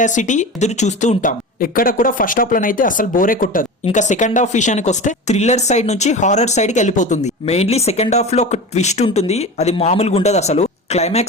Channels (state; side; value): normal; both; correlation 0.30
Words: ఎదురు చూస్తూ ఉంటాం. ఎక్కడ కూడా ఫస్ట్ హాఫ్ లోనైతే అసలు బోరే కొట్టదు. ఇంకా సెకండ్ హాఫ్ విషయానికి వస్తే థ్రిల్లర్ సైడ్ నుంచి హారర్ సైడ్ కి వెళ్ళిపోతుంది. మెయిన్లీ సెకండ్ హాఫ్ లో ఒక ట్విస్ట్ ఉంటుంది, అది మామూలుగా ఉండదు. అసలు